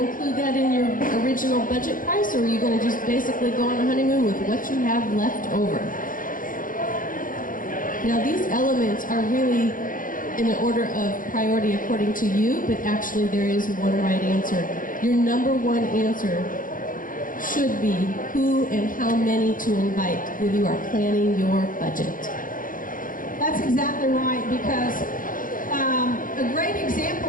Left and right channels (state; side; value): late; right; 0.40 ms